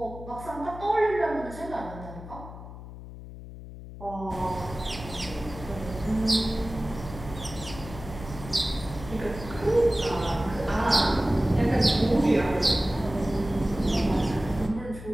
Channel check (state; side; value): noise; left; hum, 13 dB below the sound